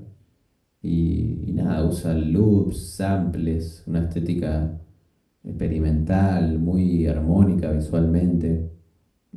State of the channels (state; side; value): identical; both; correlation 1.00